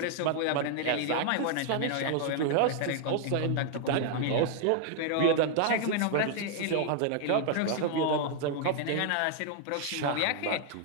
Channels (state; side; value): different; both; correlation 0.00